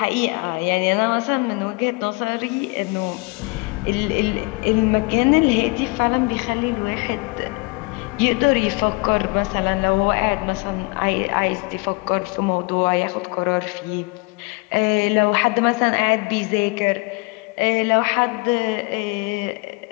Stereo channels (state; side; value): quieter; right; 28.9 dB